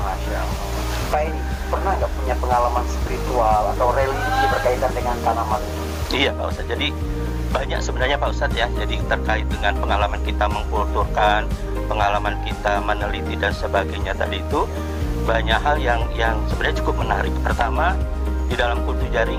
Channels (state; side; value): identical; both; correlation 1.00